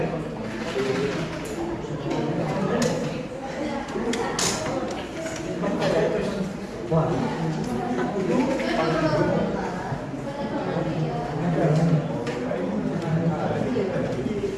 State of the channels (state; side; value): identical; both; correlation 1.00